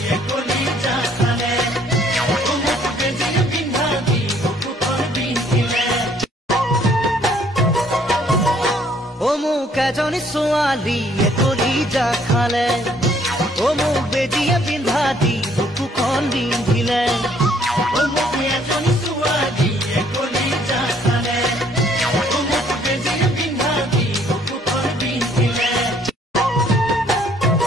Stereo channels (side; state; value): both; normal; correlation 0.63